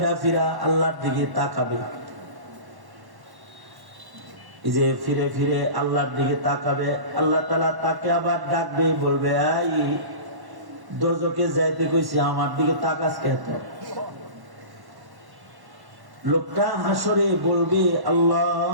ফিরা আল্লাহর দিকে তাকাবে। এই যে ফিরে ফিরে আল্লাহর দিকে তাকাবে, আল্লাহ তাআলা তাকে আবার ডাকবে, বলবে এই দোজখে যাইতে কইছি, আমার দিকে তাকাস কেন? লোকটা হাসরে বলবে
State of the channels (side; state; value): left; late; 1.1 ms